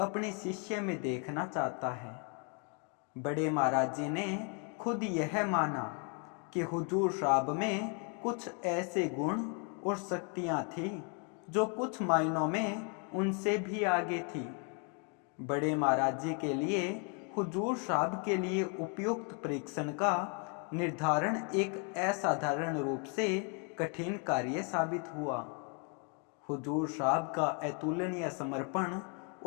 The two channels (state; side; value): quieter; right; 38.1 dB